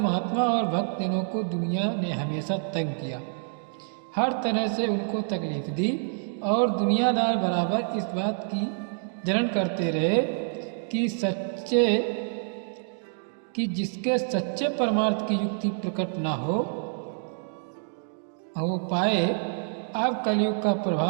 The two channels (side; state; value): left; silent; digital silence